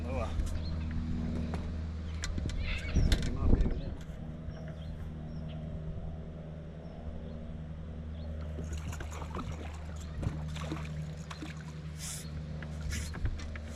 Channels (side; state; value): both; identical; correlation 1.00